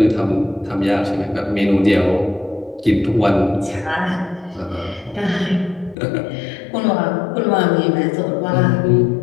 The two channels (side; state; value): right; drops out; at 6.0 s